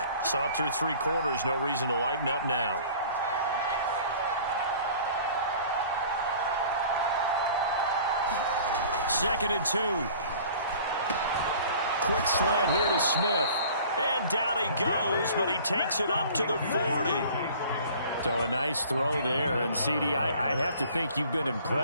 Saw it through 3 quarters, no reason to lighten up now. Second and 2. Quick slant here to Smith. And down he goes, but he takes it up to the 40. So a nice throw there. And, CD, I'd have to think you've been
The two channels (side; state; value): both; inverted; correlation -0.48